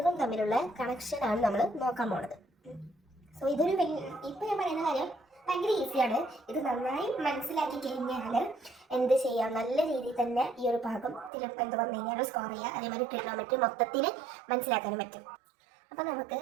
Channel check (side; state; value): left; drops out; at 11.3 s